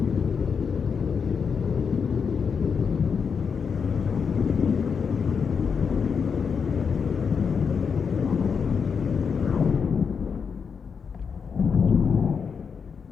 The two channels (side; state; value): right; quieter; 6.1 dB